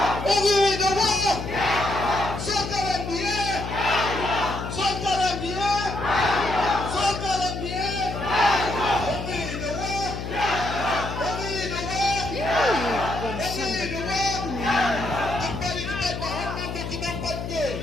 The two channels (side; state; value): left; noise; hum, 6 dB below the sound